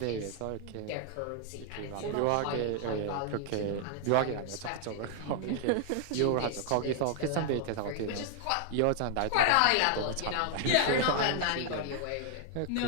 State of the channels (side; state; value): both; different; correlation 0.00